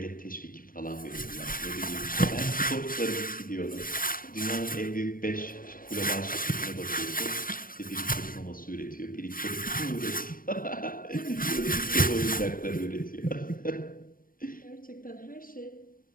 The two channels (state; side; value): late; right; 0.41 ms